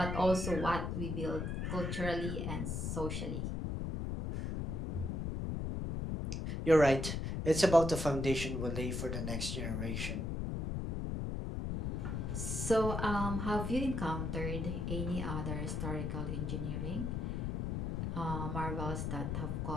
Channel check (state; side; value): noise; left; rumble, 2 dB below the sound